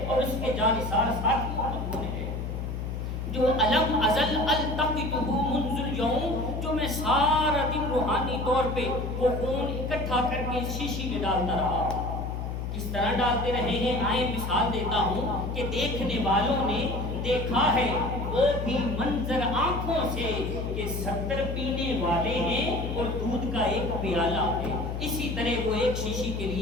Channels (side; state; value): left; noise; hum, 4 dB below the sound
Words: اور اس کے جانثار ساتھیوں کا خون ہے، جو علم ازل التقطہ منذ اليوم، جو میں سارا دن روحانی طور پہ وہ خون اکٹھا کر کے شیشی میں ڈالتا رہا۔ کس طرح ڈالتے رہے ہیں آئیں مثال دیتا ہوں کہ دیکھنے والوں نے دیکھا ہے وہ بھی منظر آنکھوں سے کہ 70 پینے والے ہیں اور دودھ کا ایک پیالہ ہے، اسی طرح وہ ایک شیشی کے